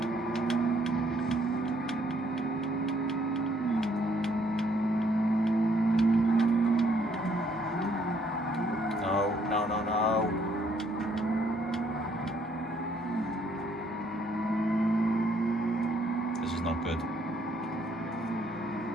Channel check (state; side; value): normal; both; correlation 0.68